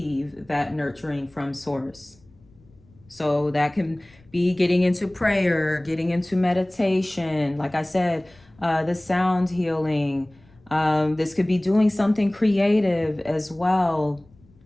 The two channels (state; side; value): noise; left; rumble, 29 dB below the sound